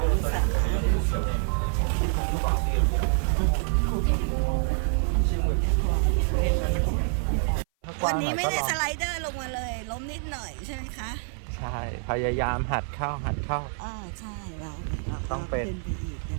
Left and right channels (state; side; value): silent; left; 56 dB below the other